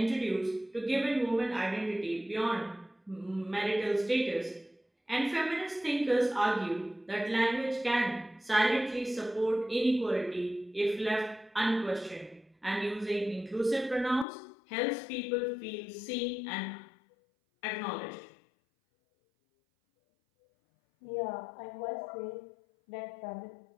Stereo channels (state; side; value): drops out; right; at 14.2 s